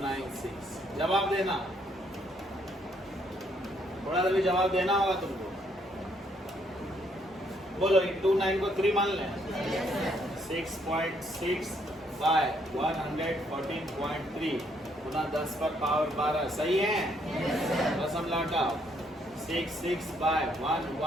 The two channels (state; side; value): normal; both; correlation 0.70